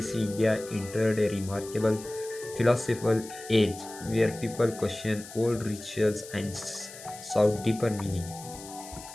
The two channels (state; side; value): noise; left; hiss, 15 dB below the sound